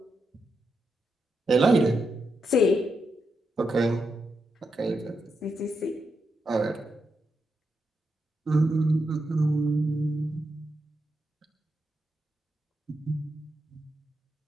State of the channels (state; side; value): normal; both; correlation 0.85